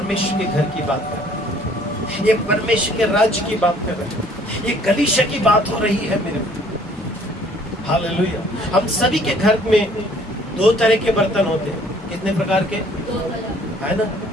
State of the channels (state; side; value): normal; both; correlation 0.58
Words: के घर की बात कर रहा है, ये परमेश्वर के राज्य की बात कर रहा है, ये कलीसिया की बात हो रही है मेरे। हालेलुया। हम सभी के घर में दो तरह के बर्तन होते हैं। कितने प्रकार के? है ना।